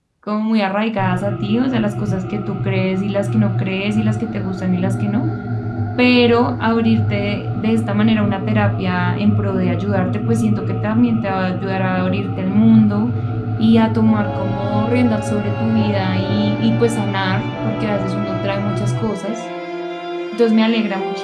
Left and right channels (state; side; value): identical; both; correlation 1.00